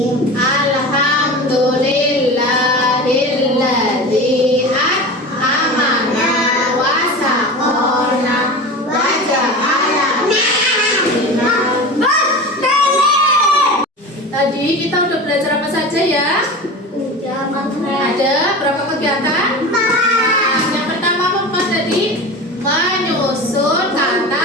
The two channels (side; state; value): both; normal; correlation 0.31